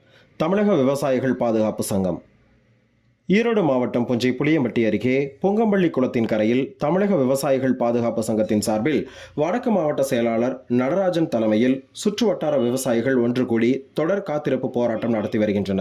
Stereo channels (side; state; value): both; identical; correlation 1.00